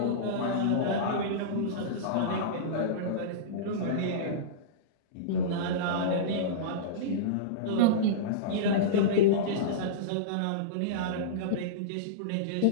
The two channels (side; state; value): both; different; correlation -0.04